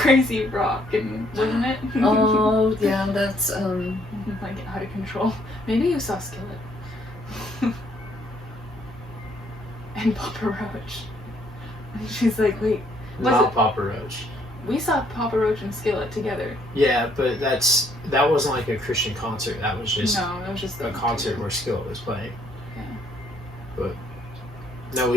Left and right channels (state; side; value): normal; both; correlation 0.67